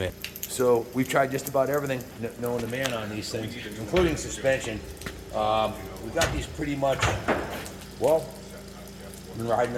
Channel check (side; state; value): both; identical; correlation 1.00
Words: So we've tried just about everything known to man on these things, including suspension. We got these pretty much, well, been riding